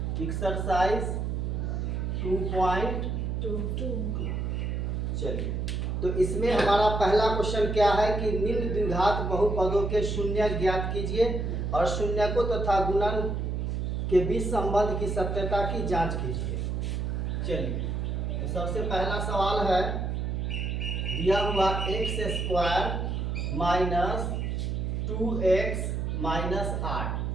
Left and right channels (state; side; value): noise; right; hum, 1 dB below the sound